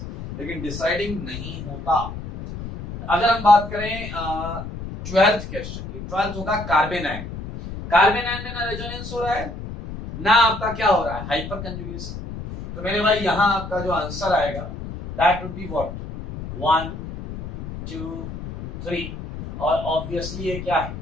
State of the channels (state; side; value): noise; left; rumble, 9 dB below the sound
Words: लेकिन डिसाइडिंग नहीं होता। अगर हम बात करें 12th क्वेश्चन की, 12th होगा कार्बन आयन। कार्बन आयन में ना रेजोनेंस हो रहा है ना आपका क्या हो रहा है? Hyper conjugation. तो मेरे भाई यहाँ आपका जो आंसर आएगा दैट वुड बी व्हाट? 1, 2, 3, और ऑब्वियसली ये क्या है?